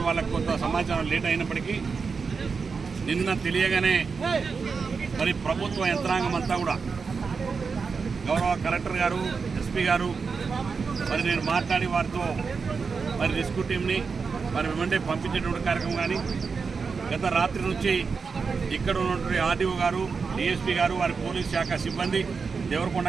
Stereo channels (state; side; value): quieter; left; 5.1 dB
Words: వాళ్ళకు కొంత సమాచారం లేట్ అయినప్పటికీ నిన్న తెలియగానే మరి ప్రభుత్వ యంత్రాంగం అంతా కూడా గౌరవ కలెక్టర్ గారు, ఎస్పీ గారు మరి నేను మాట్లాడి వారితో మరి రెస్క్యూ టీంని మరి వెంటనే పంపించేటువంటి కార్యక్రమం కానీ గత రాత్రి నుంచి ఇక్కడ ఉన్నటువంటి ఆర్డీఓ గారు, డిఎస్పీ గారు, వారి పోలీస్ శాఖ సిబ్బంది,